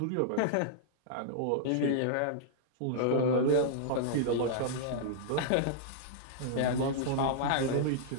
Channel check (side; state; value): both; different; correlation -0.02